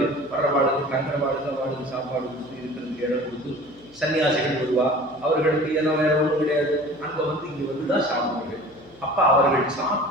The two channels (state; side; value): noise; left; hum, 25 dB below the sound